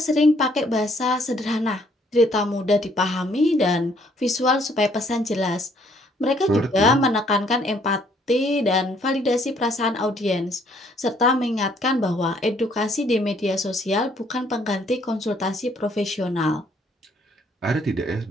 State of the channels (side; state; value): both; normal; correlation 0.64